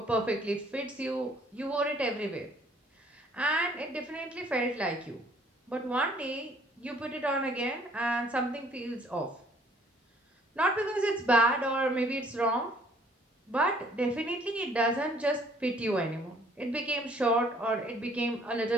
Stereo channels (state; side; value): normal; both; correlation 0.60